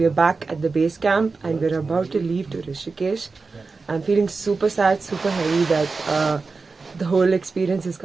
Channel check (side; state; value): left; quieter; 4.2 dB